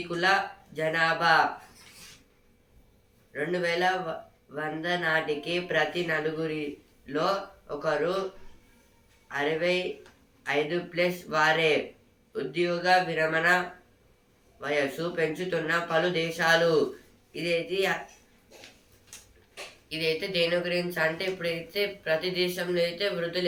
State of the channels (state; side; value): identical; both; correlation 1.00